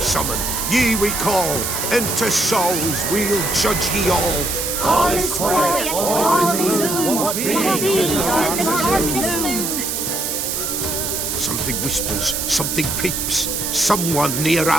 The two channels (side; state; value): right; noise; hiss, 2 dB below the sound